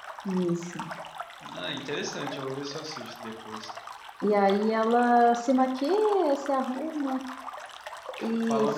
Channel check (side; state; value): both; identical; correlation 1.00